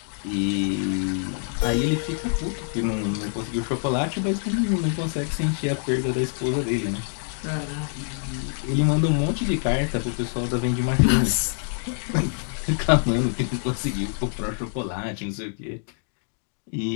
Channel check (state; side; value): silent; right; digital silence